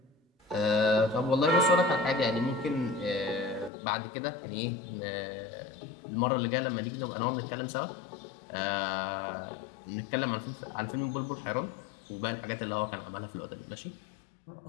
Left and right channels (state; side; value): drops out; right; at 3.7 s